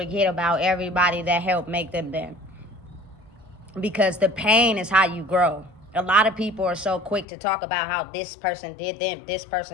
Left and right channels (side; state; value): right; drops out; at 7.2 s